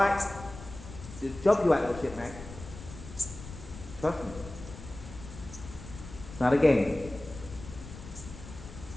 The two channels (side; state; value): left; noise; rumble, 14 dB below the sound